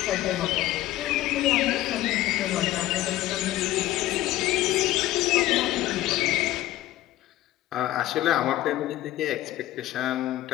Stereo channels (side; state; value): right; quieter; 15.1 dB